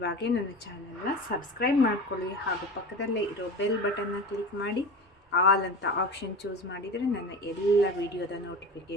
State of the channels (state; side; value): normal; both; correlation 0.30